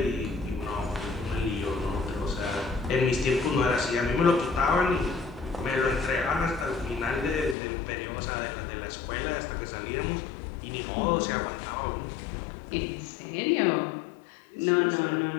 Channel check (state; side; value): drops out; right; at 7.6 s